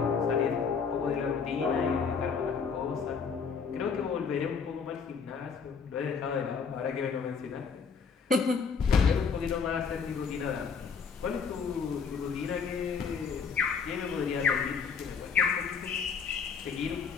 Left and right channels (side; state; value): right; quieter; 5.9 dB